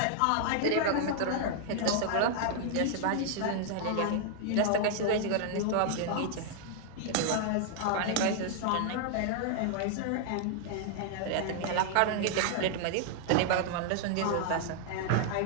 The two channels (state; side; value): different; both; correlation 0.00